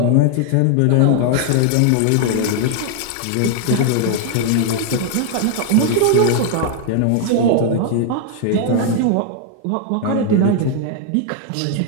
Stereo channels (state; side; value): different; both; correlation 0.00